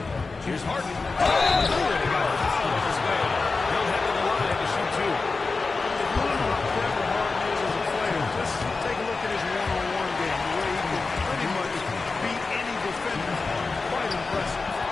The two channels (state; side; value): quieter; right; 4.0 dB